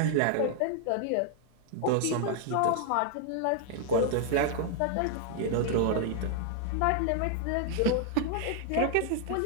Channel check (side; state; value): both; different; correlation 0.00